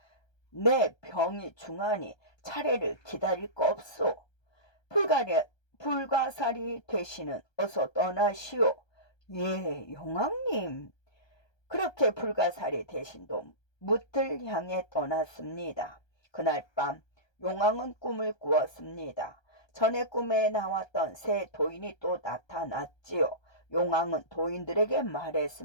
내 병이 중하니 차례를 기다릴 거 없소. 불가사리 대신은 어서 떠나시오. 예, 용왕님. 그렇게 불가사리 대신도 묻을 향해 떠났습니다. 그날 밤 용왕은 꿈을 꾸었습니다. 전에 꿈에 나왔던 새 도인이 또 나타났지요. 용왕은 도인들에게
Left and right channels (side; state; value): right; late; 1.3 ms